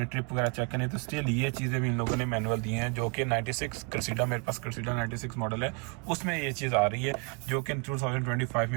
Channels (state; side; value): quieter; left; 35.6 dB